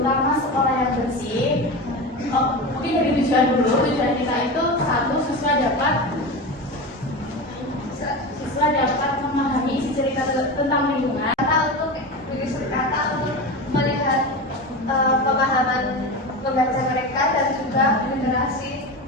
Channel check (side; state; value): both; normal; correlation 0.24